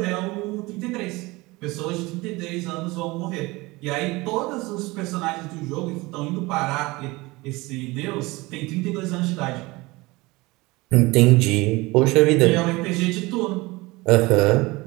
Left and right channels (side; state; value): left; quieter; 22.3 dB